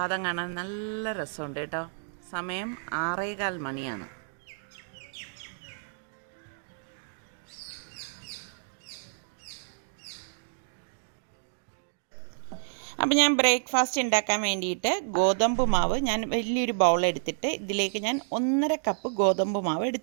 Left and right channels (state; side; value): silent; left; digital silence